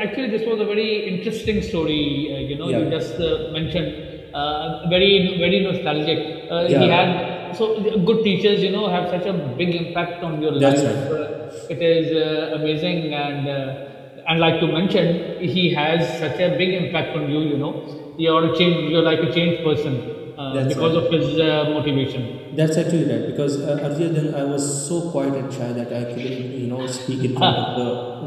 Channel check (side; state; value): both; identical; correlation 1.00